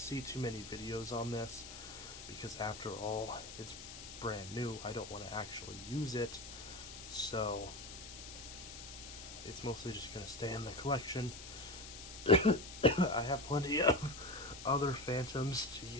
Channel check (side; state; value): left; noise; hiss, 12 dB below the sound